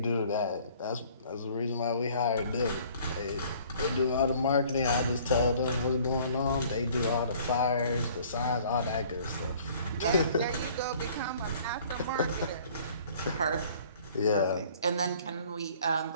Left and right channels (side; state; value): both; inverted; correlation -0.54